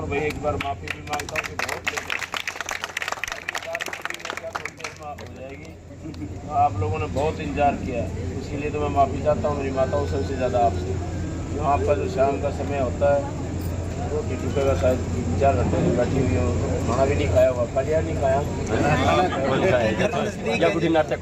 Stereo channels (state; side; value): identical; both; correlation 1.00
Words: वही एक बार माफ़ी भी मांगता हूँ कि बहुत लेट हो जाएगी, आप लोगों ने बहुत इंतजार किया है, इसीलिए तो मैं माफ़ी चाहता हूँ मेरी माताओं सबसे ज़्यादा आपसे। जो आपका जो शाम का समय होता है रोटी टुके का शायद 4 घंटे से बैठी हुई हो, खाना भी नहीं खाया हुआ, खलिया नहीं खाया, या बुढ़ी नाटक